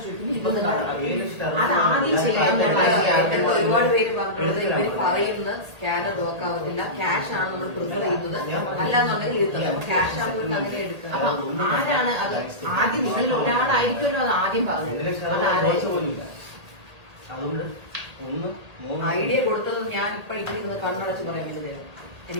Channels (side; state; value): left; late; 1.8 ms